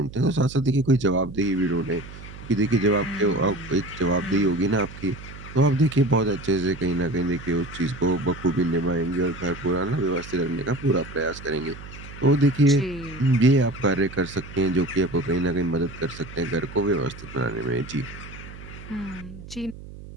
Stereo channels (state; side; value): noise; right; hum, 15 dB below the sound